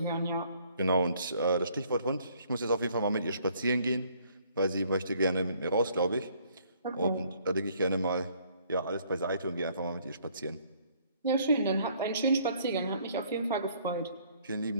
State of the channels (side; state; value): both; inverted; correlation -0.63